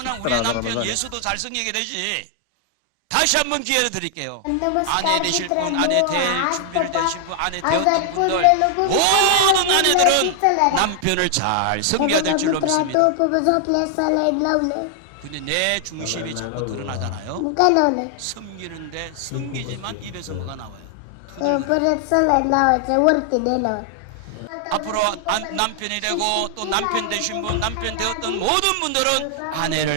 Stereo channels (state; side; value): different; both; correlation 0.00